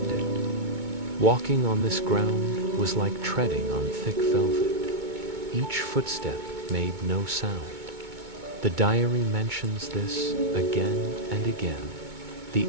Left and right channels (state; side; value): late; left; 2.2 ms